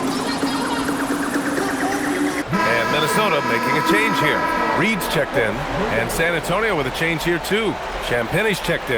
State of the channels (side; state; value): both; identical; correlation 1.00